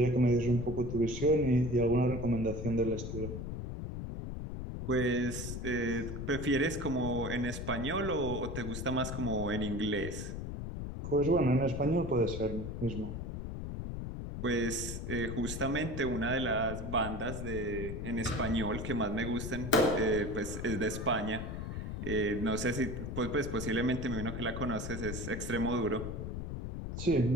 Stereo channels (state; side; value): noise; left; rumble, 5 dB below the sound